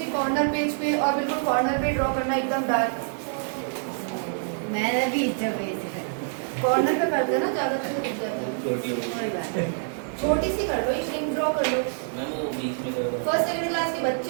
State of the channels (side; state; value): left; silent; digital silence